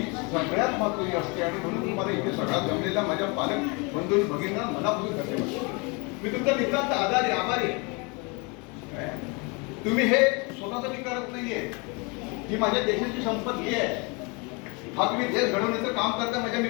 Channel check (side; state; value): right; quieter; 30.3 dB